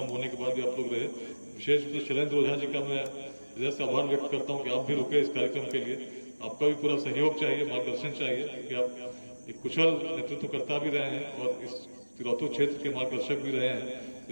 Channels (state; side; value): inverted; both; correlation -1.00